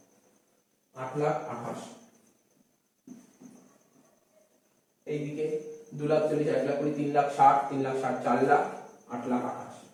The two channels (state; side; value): identical; both; correlation 1.00